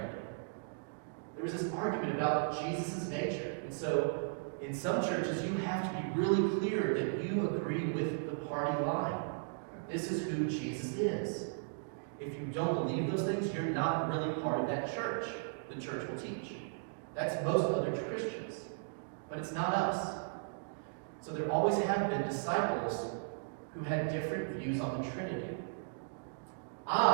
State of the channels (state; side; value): silent; left; digital silence